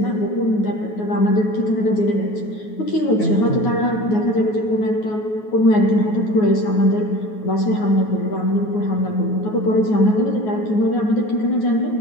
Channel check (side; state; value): right; late; 9.4 ms